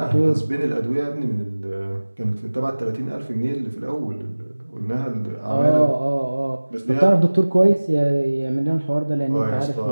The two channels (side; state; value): both; inverted; correlation -1.00